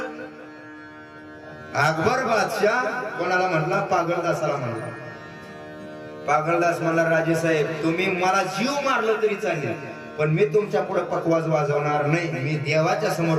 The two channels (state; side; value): identical; both; correlation 1.00